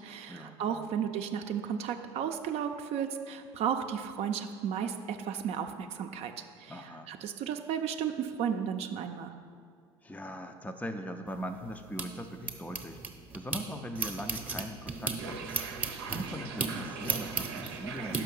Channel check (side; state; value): left; quieter; 5.3 dB